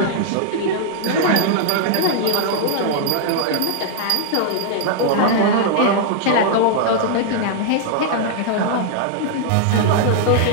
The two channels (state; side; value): different; both; correlation -0.01